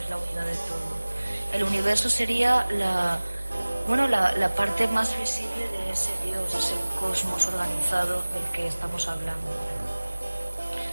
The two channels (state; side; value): inverted; both; correlation -1.00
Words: es la unidad de todo. El universo sería la parte más visible de ese Dios, ese cosmos organizado del que estamos hablando.